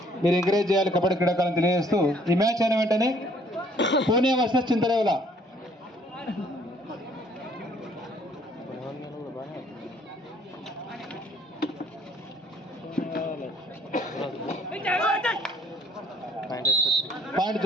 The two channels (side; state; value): both; normal; correlation 0.60